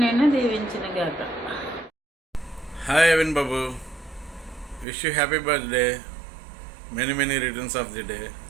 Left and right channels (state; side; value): drops out; left; at 4.9 s